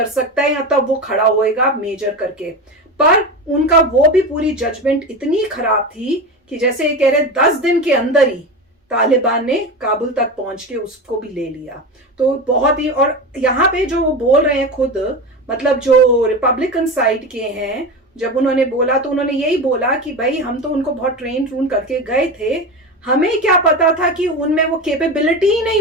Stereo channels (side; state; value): both; normal; correlation 0.24